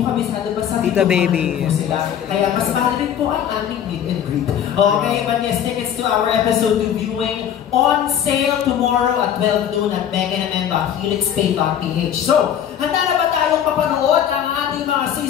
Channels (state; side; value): quieter; right; 9.5 dB